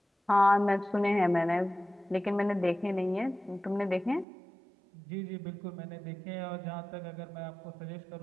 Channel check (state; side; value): drops out; left; at 4.2 s